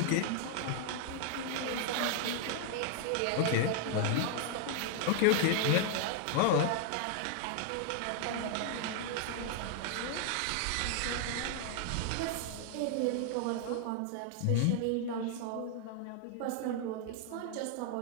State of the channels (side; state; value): both; different; correlation 0.00